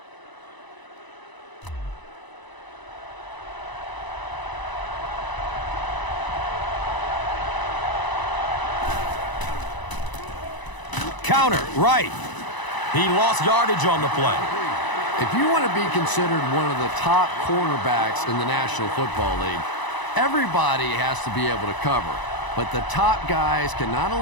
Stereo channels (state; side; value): late; right; 1.0 ms